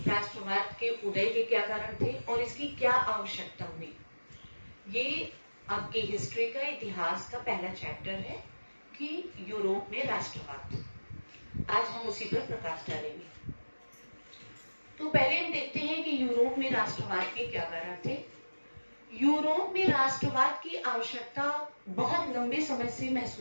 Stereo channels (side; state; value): both; inverted; correlation -1.00